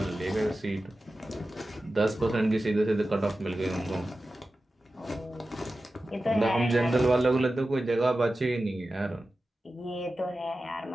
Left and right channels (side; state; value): both; normal; correlation 0.94